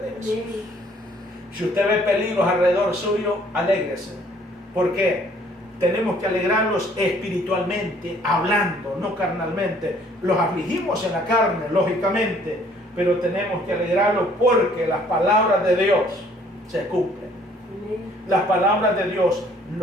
Jesús. Si usted ve peligros alrededor suyo, alégrese. ¿Por qué? Tenemos que alegrarlos espiritualmente, hablando, no carnalmente. Los afligimos en la carne, lógicamente, pero tenemos que alegrarlos porque las palabras de Dios se cumplen. Las palabras de Dios,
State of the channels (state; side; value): normal; both; correlation 0.60